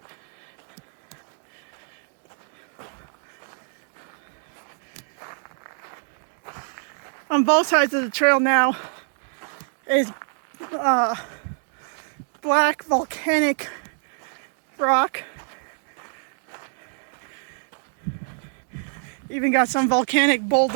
On both sides of the trail now, is black volcanic rock. Even got some volcanic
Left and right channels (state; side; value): silent; left; 61 dB below the other